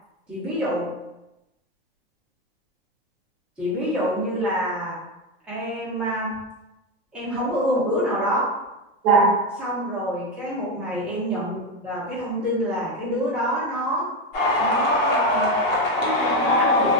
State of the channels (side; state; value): both; normal; correlation 0.11